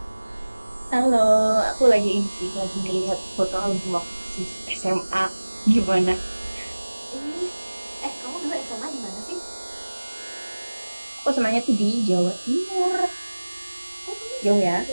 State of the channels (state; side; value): inverted; both; correlation -1.00